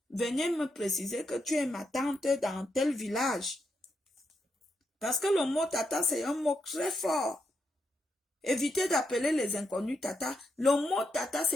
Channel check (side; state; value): both; normal; correlation 0.82